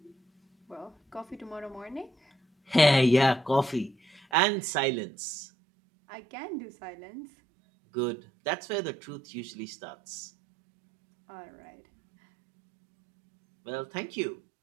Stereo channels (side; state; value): left; drops out; at 4.2 s